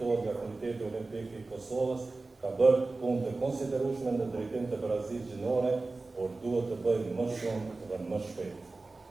nga Komiteti Olimpik I Kosovës, ka bërë punë të konsiderueshme në drejtim të Barazisë Gjinore, por duhet të bëjë më shumë dhe më shpejt.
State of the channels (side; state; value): left; quieter; 3.5 dB